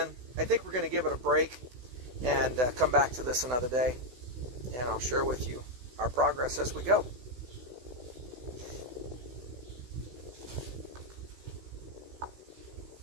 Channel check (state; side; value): late; left; 16 ms